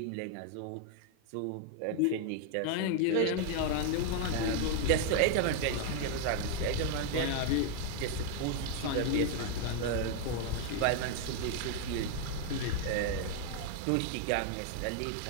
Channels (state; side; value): different; both; correlation 0.00